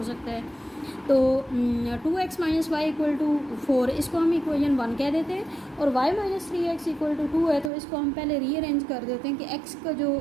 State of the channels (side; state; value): left; drops out; at 7.7 s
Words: सकता है। तो 2x - y इक्वल टू 4, इसको हम इक्वेशन 1 कह देते हैं, और y - 3x इक्वल टू 2 है, तो इसको हम पहले रीअरेंज कर देते हैं कि x का जो